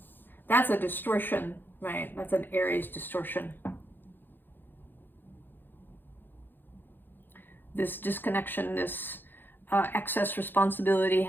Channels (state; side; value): late; right; 0.095 ms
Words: distortion, right? That's an Aries distortion. This disconnection, this excess responsibility,